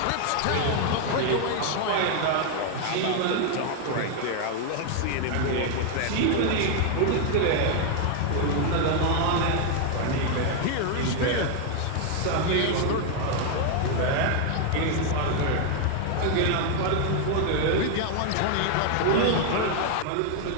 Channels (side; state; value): both; different; correlation 0.00